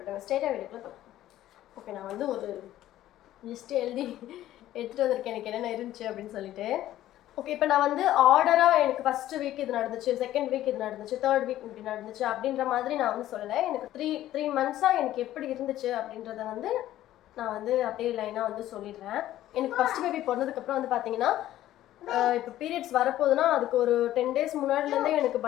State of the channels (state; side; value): quieter; right; 13.6 dB